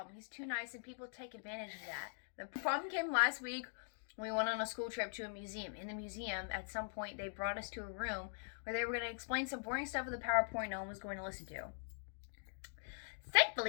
He's too nice and people take advantage of that. The problem came last week when we went on a school trip to a museum. In the museum, at some point, they brought us to a room where they were going to explain some boring stuff with a PowerPoint no one was going to listen to.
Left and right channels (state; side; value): silent; right; digital silence